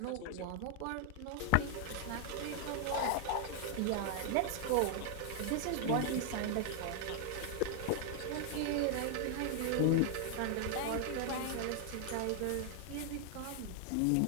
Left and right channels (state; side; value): different; both; correlation 0.00